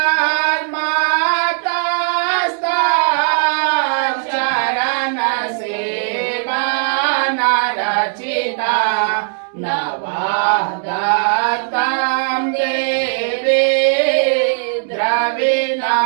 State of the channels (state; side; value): silent; left; digital silence